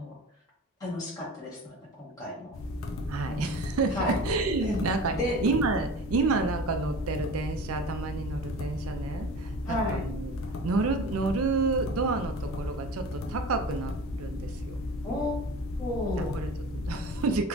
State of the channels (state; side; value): normal; both; correlation 0.37